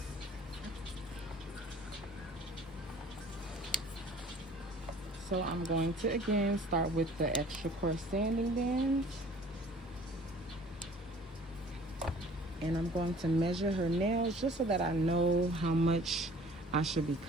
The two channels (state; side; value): normal; both; correlation 0.51